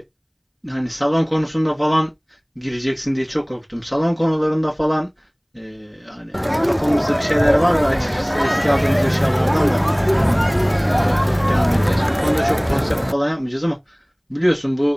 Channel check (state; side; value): identical; both; correlation 1.00